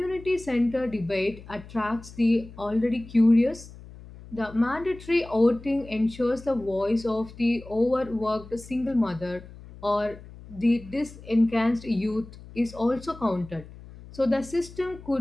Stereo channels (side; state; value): left; noise; hum, 18 dB below the sound